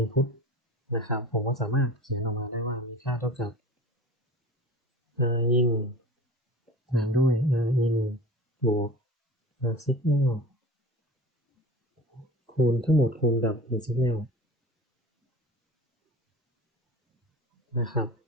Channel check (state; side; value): normal; both; correlation 0.37